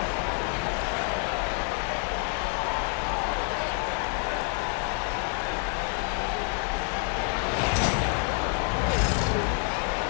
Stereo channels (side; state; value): right; quieter; 35.2 dB